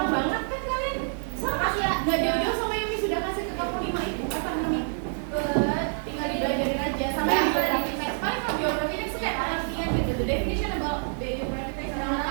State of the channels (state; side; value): silent; left; 60 dB below the other